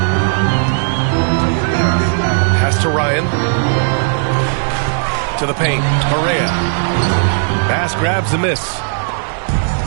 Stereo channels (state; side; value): silent; left; digital silence